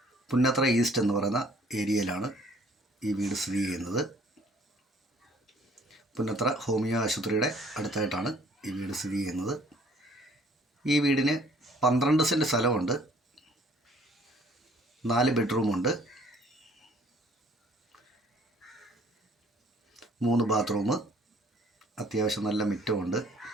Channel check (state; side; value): normal; both; correlation 0.58